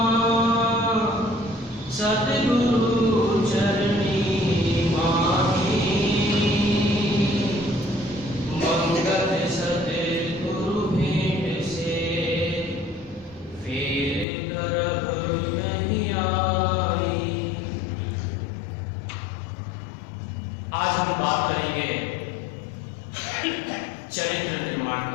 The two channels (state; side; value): drops out; right; at 14.2 s